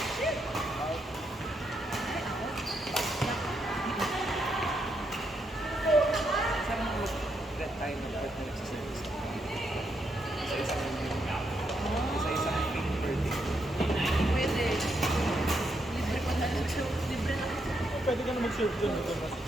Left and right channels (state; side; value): normal; both; correlation 0.79